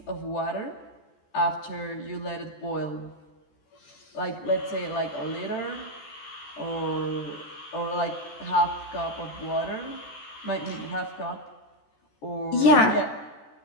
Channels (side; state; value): right; late; 14 ms